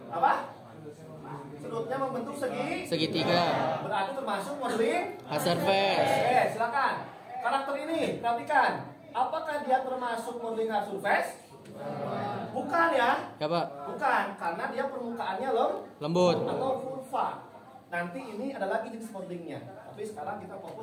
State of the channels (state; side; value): identical; both; correlation 1.00